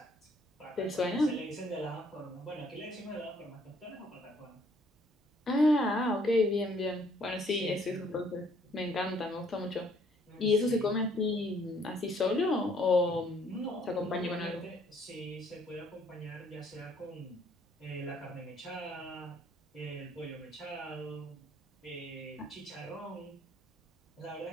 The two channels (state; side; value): normal; both; correlation 0.63